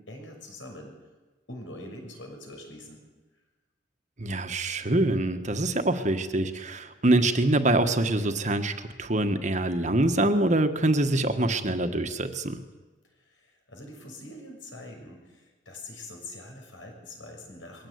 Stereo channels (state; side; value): normal; both; correlation 0.56